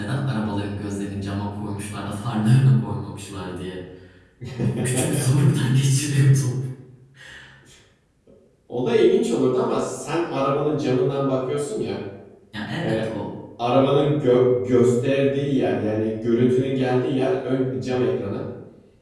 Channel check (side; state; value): both; identical; correlation 1.00